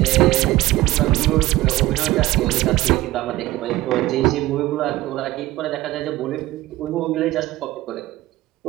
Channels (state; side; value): quieter; left; 17.2 dB